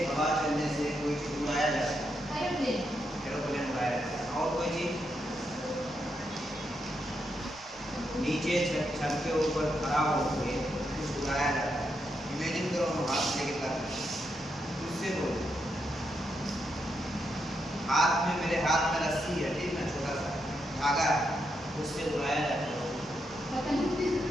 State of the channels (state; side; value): noise; right; rumble, 28 dB below the sound